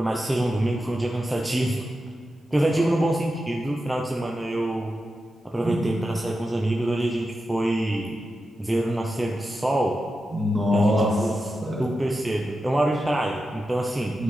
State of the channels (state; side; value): normal; both; correlation 0.90